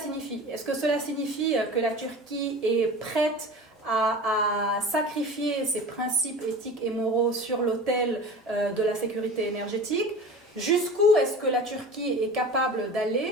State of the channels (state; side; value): normal; both; correlation 0.36